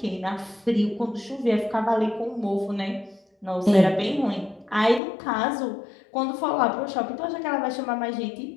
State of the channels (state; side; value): drops out; right; at 5.0 s